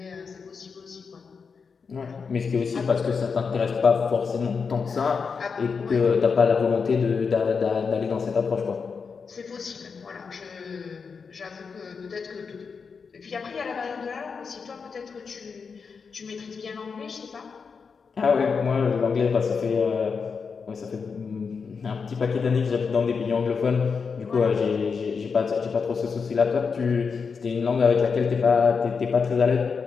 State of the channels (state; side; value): quieter; right; 5.5 dB